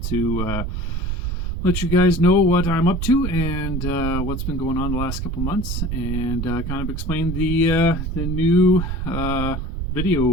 to let you guys know what I'm up to and what's been going on the last couple months, and kind of explain the new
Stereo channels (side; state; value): right; noise; rumble, 3 dB below the sound